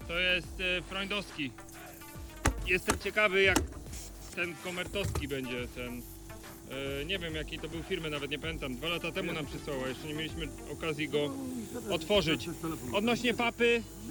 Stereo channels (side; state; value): both; identical; correlation 1.00